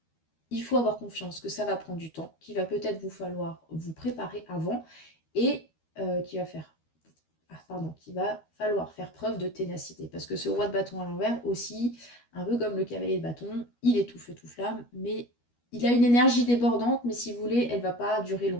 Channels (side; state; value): right; late; 12 ms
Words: il faut avoir confiance que ça va prendre du temps, qu'il va peut-être vous falloir vous préparer avant et qu'il va falloir faire preuve de ténacité. Parce que ce roi de bâton à l'envers aussi, un peu comme le cavalier de bâton, il est tout feu tout flamme, mais il a une énergie débordante, mais si vous voulez, elle ne va pas durer